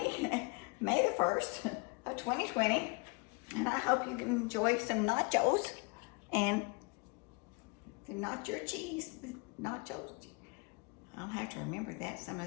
May the 1st of 2020, and I hope you can enjoy some nachos and the nacho cheese, nachos. I'll have to remember that some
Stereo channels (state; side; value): quieter; right; 31.3 dB